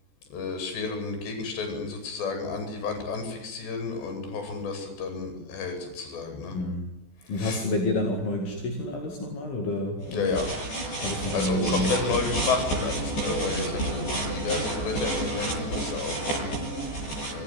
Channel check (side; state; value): right; late; 14 ms